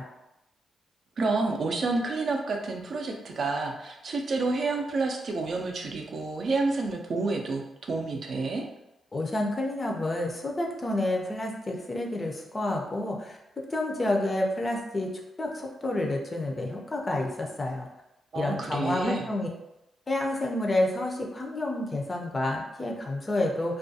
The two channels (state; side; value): normal; both; correlation 0.84